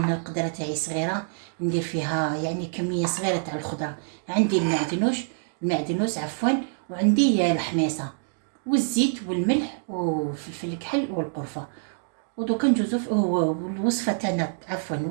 القدره تاعي صغيره ندير فيها يعني كميه صغيره تاع الخضره. عندي المعدنوس عفوا، وعندي الحميصه والزيت والملح وفلفل الكحل والقرفه. ودوكا ندوزو الوصفه تاعنا، عفوا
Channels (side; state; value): left; silent; digital silence